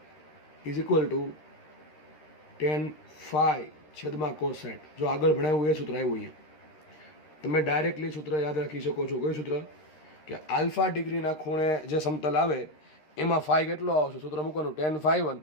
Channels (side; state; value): right; late; 13 ms